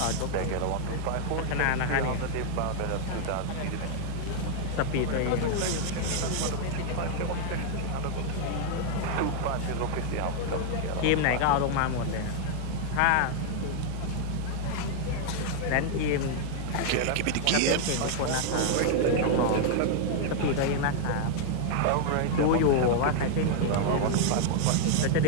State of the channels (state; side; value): different; both; correlation 0.00